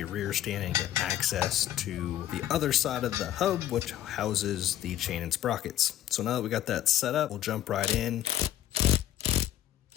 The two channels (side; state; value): right; quieter; 12.1 dB